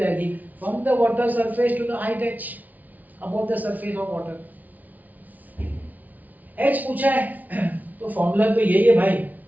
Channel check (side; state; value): left; late; 0.077 ms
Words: from the water surface to the height h above the surface of water. h पूछा है तो फॉर्मूला तो यही है भाई,